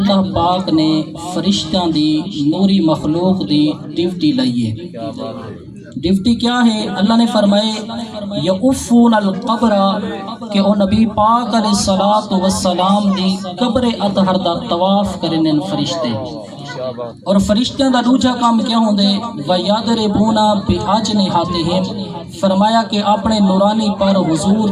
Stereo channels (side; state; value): both; identical; correlation 1.00